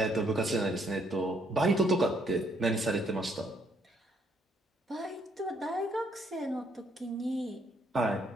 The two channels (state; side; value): normal; both; correlation 0.69